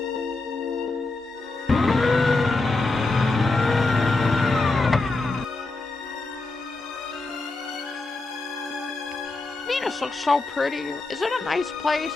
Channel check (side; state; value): right; quieter; 3.3 dB